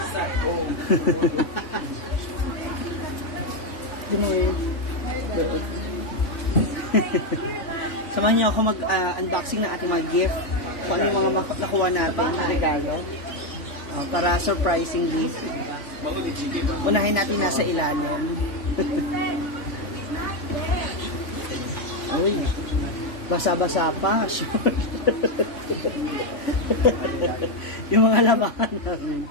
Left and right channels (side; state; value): right; late; 3.4 ms